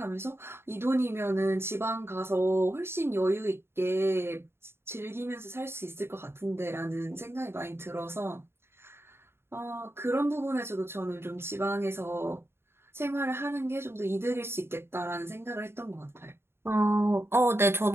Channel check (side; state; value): left; late; 0.12 ms